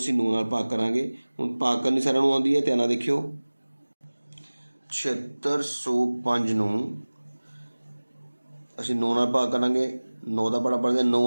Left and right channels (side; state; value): both; inverted; correlation -1.00